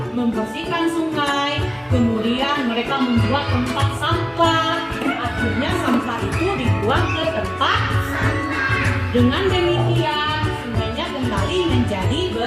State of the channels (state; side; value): identical; both; correlation 1.00